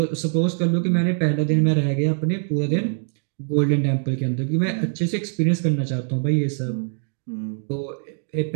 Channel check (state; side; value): silent; left; 56 dB below the other